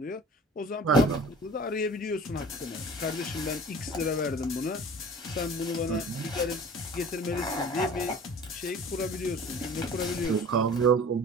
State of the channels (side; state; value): both; normal; correlation 0.43